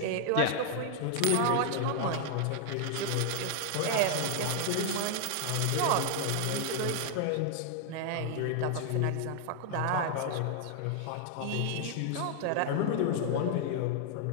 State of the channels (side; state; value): both; different; correlation -0.01